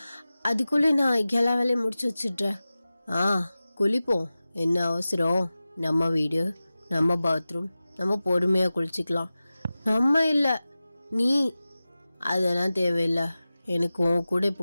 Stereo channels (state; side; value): inverted; both; correlation -0.96